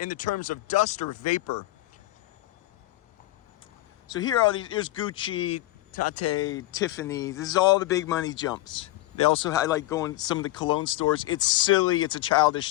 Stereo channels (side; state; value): right; quieter; 17.2 dB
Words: the terms of dust or vapor. So here are these, here's Gucci, Tate, Tiffany. This is all the big money jumps. They also, I like going to some of the cologne stores. It's silly, it's a